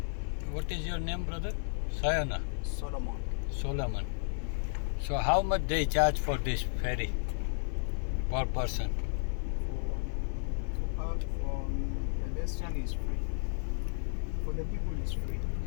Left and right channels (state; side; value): silent; right; 56 dB below the other